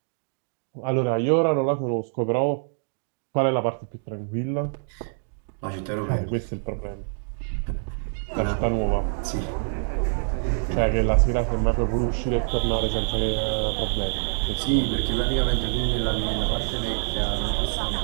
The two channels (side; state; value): left; silent; digital silence